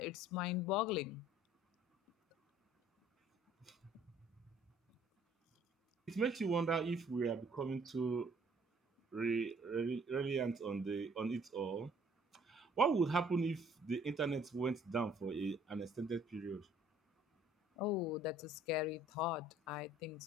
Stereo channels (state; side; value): normal; both; correlation 0.58